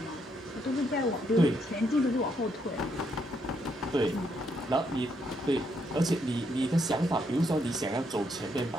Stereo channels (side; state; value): both; normal; correlation 0.75